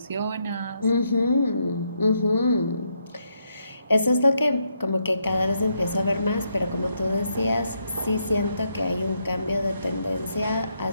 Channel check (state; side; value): inverted; both; correlation -0.78